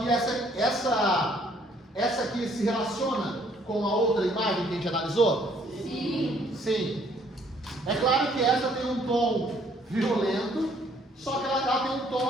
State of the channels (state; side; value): normal; both; correlation 0.63